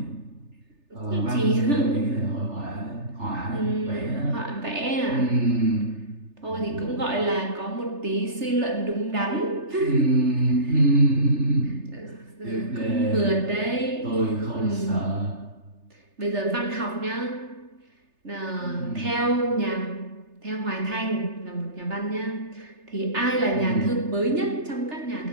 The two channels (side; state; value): left; late; 3.3 ms